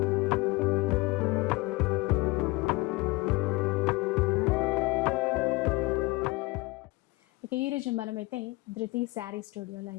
ఇక ఈరోజు మనమైతే ధృతి శారీ స్టూడియోలో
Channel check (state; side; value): quieter; right; 23.3 dB